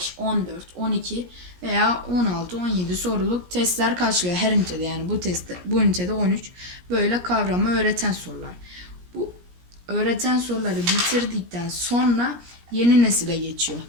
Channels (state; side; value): late; left; 17 ms